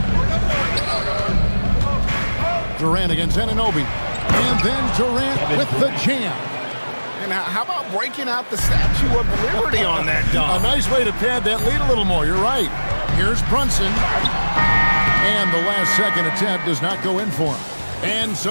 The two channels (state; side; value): inverted; both; correlation -1.00